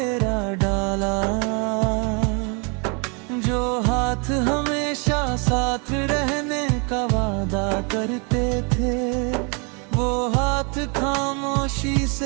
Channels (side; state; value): left; quieter; 34.3 dB